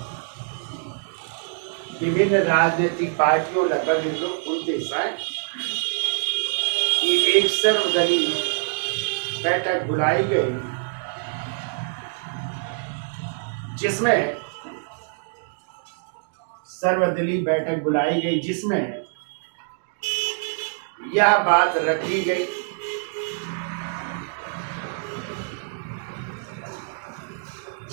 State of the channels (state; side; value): silent; left; digital silence